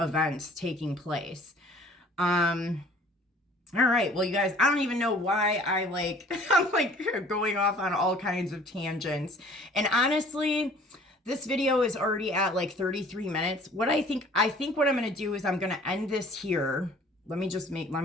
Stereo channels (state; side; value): normal; both; correlation 0.52